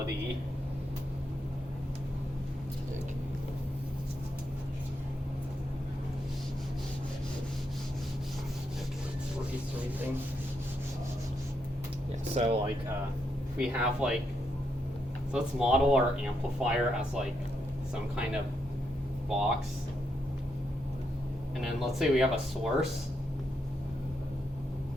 Yeah, so like if we have like, so let's model our amplifier as like some kind of box. And then let's say we have a source.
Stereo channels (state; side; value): normal; both; correlation 0.81